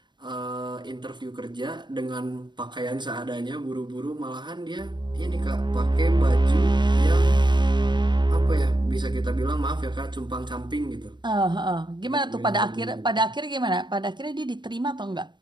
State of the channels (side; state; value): left; late; 0.22 ms